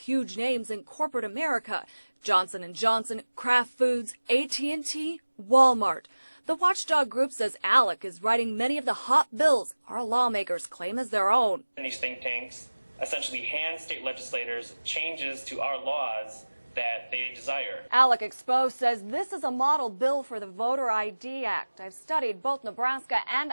names in corporate America: Johnson & Johnson, Kraft Foods, AT&T, Walmart. The watchdog group says ALEC is writing many of the hot bills our lawmakers claim as their own. And these think tanks essentially hand state legislators changes to our laws that they desire. ALEC Expose says this is a model bill for the Voter ID Act. I've studied both Nebraska and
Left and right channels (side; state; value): both; inverted; correlation -1.00